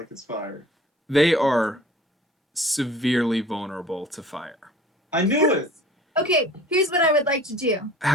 it's fire. They are severely vulnerable to fire. I knew it. Okay, here's what I would like to do.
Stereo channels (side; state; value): both; normal; correlation 0.47